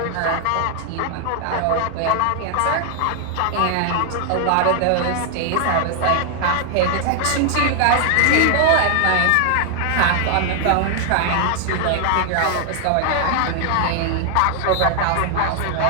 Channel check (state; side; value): different; both; correlation 0.00